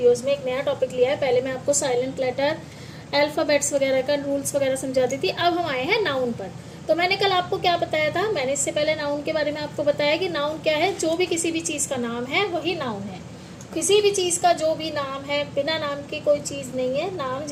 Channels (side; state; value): both; identical; correlation 1.00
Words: में एक नया टॉपिक लिया है। पहले मैं आपको साइलेंट लेटर, अल्फ़ाबेट्स वगैरह का रूल्स वगैरह समझाती थी। अब हम आए हैं नाउन पर। तो मैंने कल आपको क्या बताया था, मैंने इससे पहले नाउन के बारे में आपको बताया कि नाउन क्या है। जो भी किसी भी चीज़ का नाम है वही नाउन है। किसी भी चीज़ का जो भी नाम है, बिना नाम की कोई चीज़ नहीं है। नाम